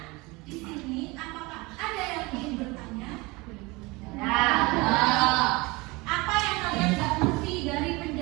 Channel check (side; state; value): left; quieter; 24.1 dB